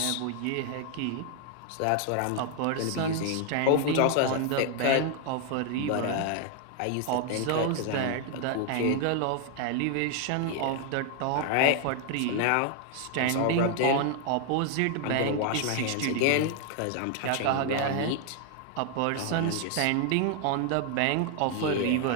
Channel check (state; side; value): different; both; correlation 0.00